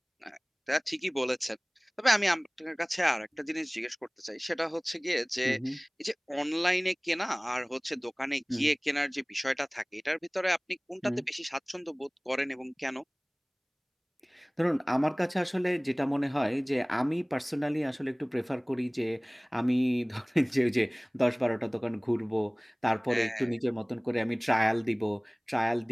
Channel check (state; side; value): identical; both; correlation 1.00